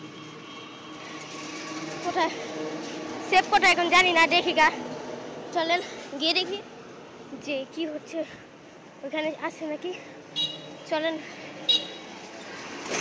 কোথায় সেব কোথায় এখন জানি না দেখি গা চলেন গিয়ে দেখি যে কি হচ্ছে ওখানে আছে নাকি চলেন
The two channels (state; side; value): identical; both; correlation 1.00